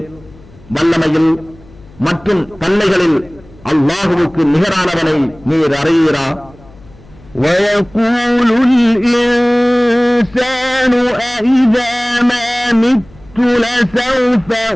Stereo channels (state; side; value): noise; left; hum, 24 dB below the sound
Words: வல்லமையில் மற்றும் தன்மைகளில் அல்லாஹுவுக்கு நிகரானவனை நீர் அறியீரா? وَيَقُولُ الْإِنسَانُ أَإِذَا مَا مِتُّ لَسَوْفَ